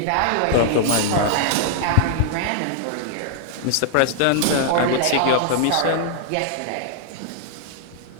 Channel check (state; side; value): different; both; correlation -0.01